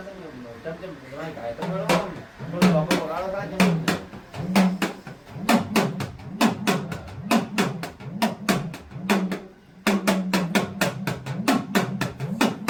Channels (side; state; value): both; identical; correlation 1.00